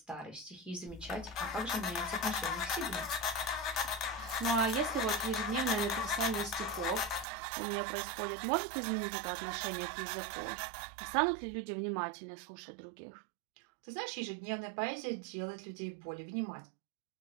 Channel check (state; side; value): drops out; left; at 7.2 s